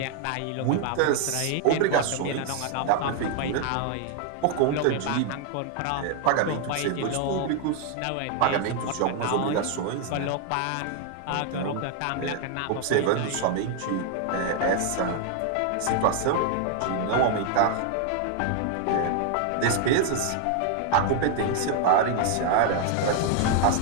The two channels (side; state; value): both; different; correlation 0.00